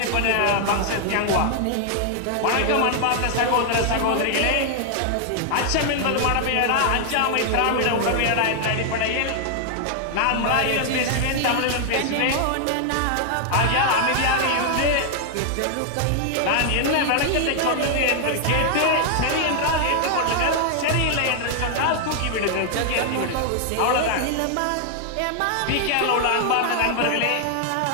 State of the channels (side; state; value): both; different; correlation 0.00